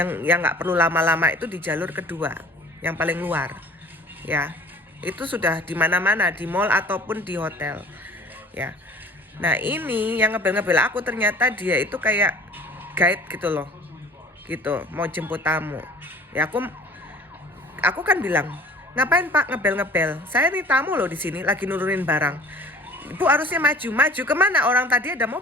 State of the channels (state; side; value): normal; both; correlation 0.48